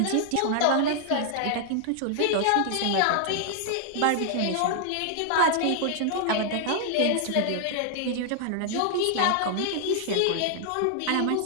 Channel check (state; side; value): different; both; correlation 0.00